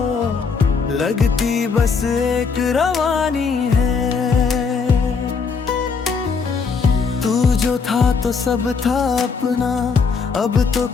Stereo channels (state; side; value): quieter; right; 5.3 dB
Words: लगती बस एक रवानी है। तू जो था तो सब था अपना, अब तो